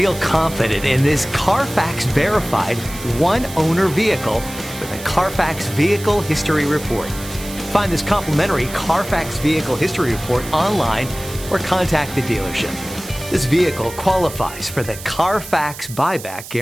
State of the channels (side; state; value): right; noise; hiss, 13 dB below the sound